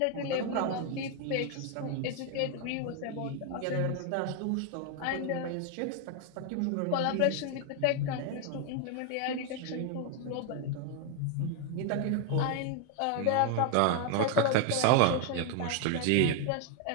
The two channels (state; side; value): different; both; correlation 0.00